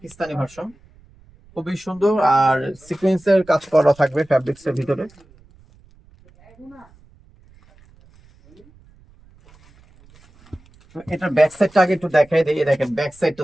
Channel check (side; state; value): right; noise; rumble, 28 dB below the sound